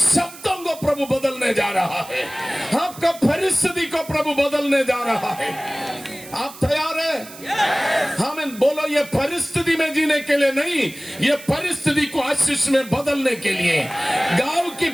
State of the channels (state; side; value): noise; right; hiss, 17 dB below the sound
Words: को प्रभु बदलने जा रहा है, आपका परिस्थिति को प्रभु बदलने जा रहा है। आप तैयार हैं? हमें बोलो, ये परिस्थिति में जीने के लिए नहीं, ये परिस्थिति को आशीष में बदलने के लिए। गांव की